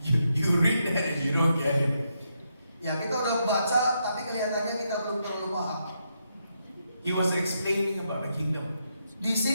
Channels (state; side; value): inverted; both; correlation -0.80